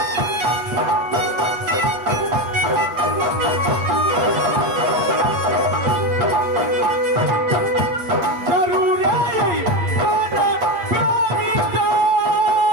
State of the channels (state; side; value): late; left; 8.5 ms